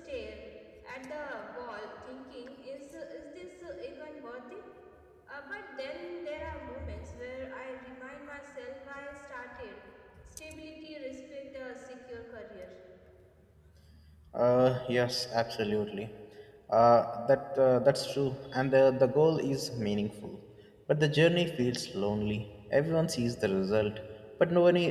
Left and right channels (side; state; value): both; identical; correlation 1.00